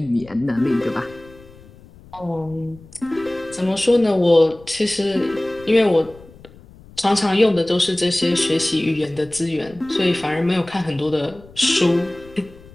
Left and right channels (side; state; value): left; noise; rumble, 22 dB below the sound